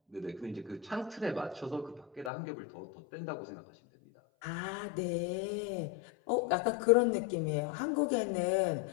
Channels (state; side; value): drops out; right; at 2.3 s